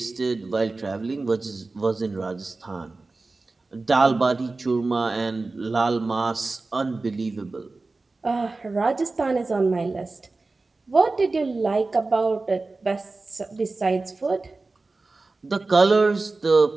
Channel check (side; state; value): left; quieter; 3.5 dB